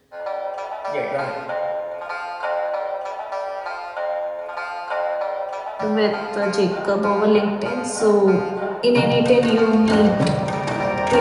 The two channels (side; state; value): both; identical; correlation 1.00